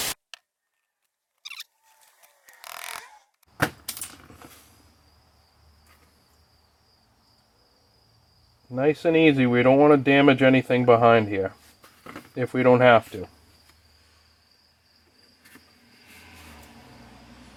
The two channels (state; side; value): identical; both; correlation 1.00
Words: Nice and easy. We don't want to damage anything behind here if we don't have to.